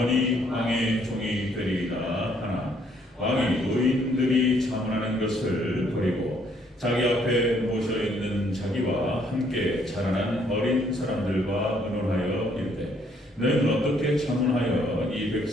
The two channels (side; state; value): both; normal; correlation 0.67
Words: 왕의 종이 되리이다 하나 왕이 노인들이 자문하는 것을 버리고 자기 앞에 모셔있는 자기와 함께 자라난 어린 사람들과 의논하여 이르되 너희는 어떻게 자문하여 이